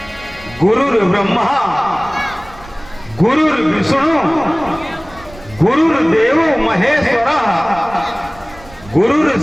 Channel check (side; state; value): right; noise; rumble, 20 dB below the sound